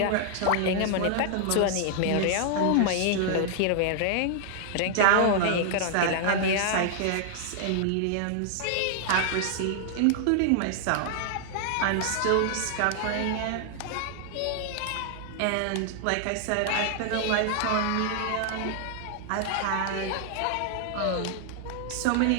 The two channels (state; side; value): different; both; correlation 0.00